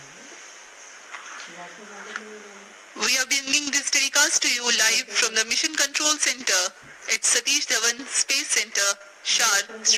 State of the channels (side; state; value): both; identical; correlation 1.00